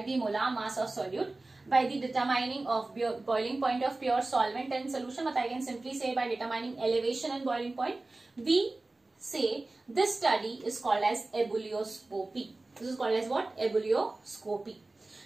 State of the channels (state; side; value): quieter; left; 3.1 dB